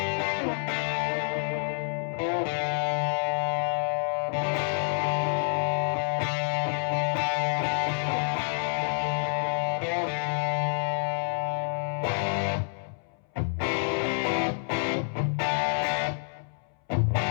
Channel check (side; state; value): right; silent; 59 dB below the other